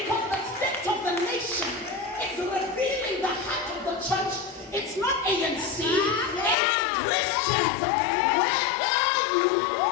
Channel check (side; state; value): right; drops out; at 6.6 s